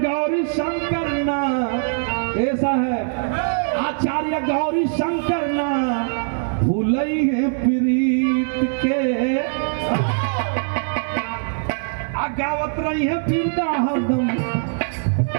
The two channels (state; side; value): silent; left; 58 dB below the other